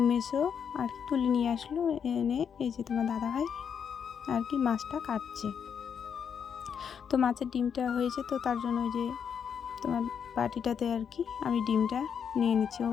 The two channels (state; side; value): quieter; right; 7.4 dB